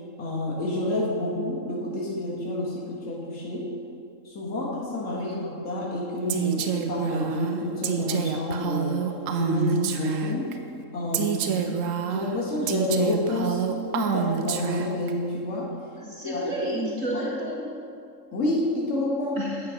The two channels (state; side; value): late; left; 3.7 ms